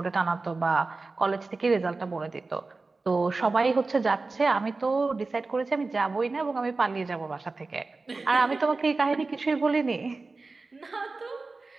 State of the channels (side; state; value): left; quieter; 3.7 dB